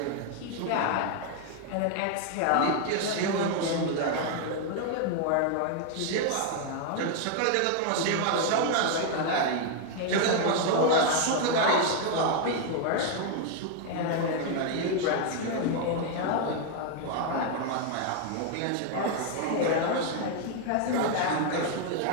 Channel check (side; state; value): both; different; correlation 0.00